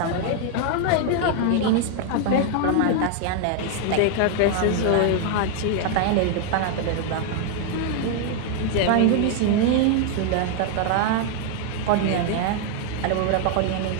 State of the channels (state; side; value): different; both; correlation 0.00